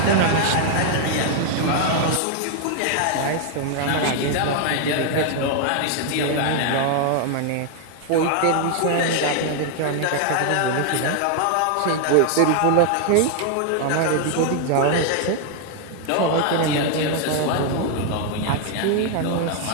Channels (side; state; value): both; different; correlation 0.00